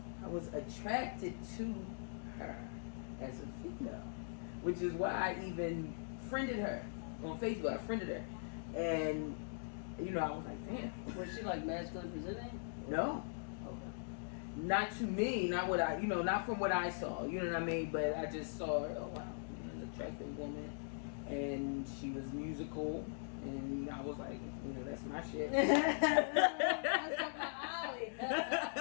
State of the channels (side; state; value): right; silent; digital silence